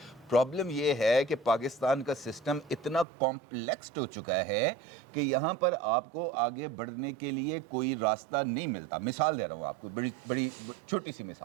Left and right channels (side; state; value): left; drops out; at 3.1 s